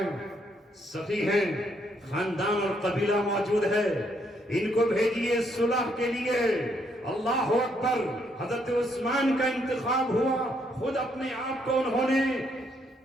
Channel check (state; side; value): normal; both; correlation 0.73